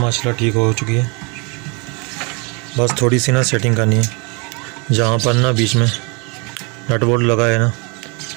ठीक हो चुकी है। बस थोड़ी सी ना सेटिंग करनी है, जहाँ पर ना बीच में नट बोल्ट लगा है ना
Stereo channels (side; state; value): left; quieter; 31.4 dB